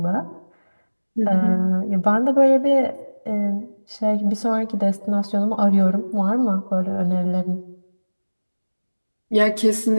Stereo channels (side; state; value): both; inverted; correlation -1.00